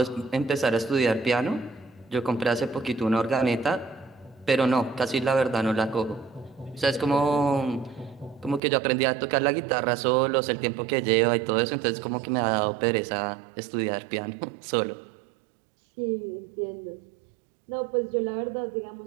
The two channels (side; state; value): left; drops out; at 8.6 s